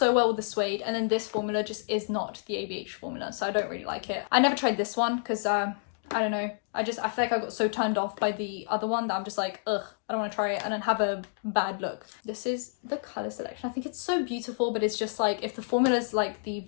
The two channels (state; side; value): silent; right; digital silence